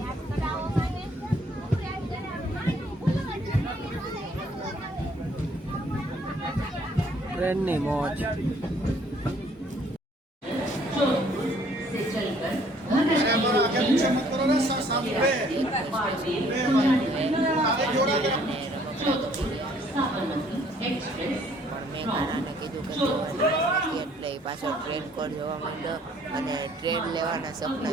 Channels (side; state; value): both; normal; correlation 0.61